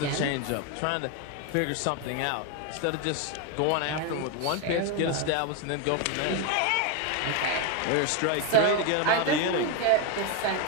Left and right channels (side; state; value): both; different; correlation 0.02